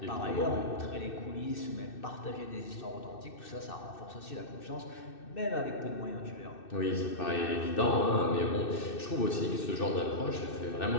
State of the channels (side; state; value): right; late; 2.6 ms